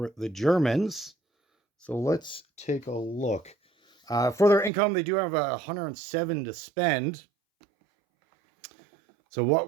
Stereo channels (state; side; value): drops out; left; at 4.7 s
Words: the Germans. So let's take a look. For their income, they do have 107 to spend. So